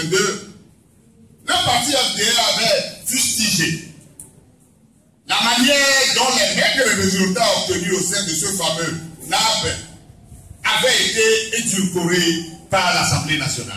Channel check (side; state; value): both; identical; correlation 1.00